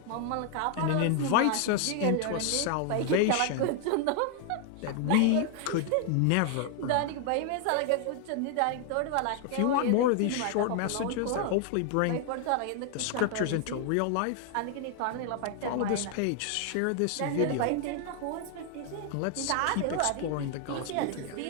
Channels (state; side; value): different; both; correlation 0.00